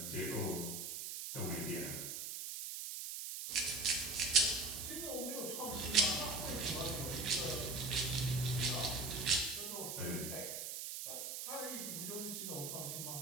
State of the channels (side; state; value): right; noise; hiss, 5 dB below the sound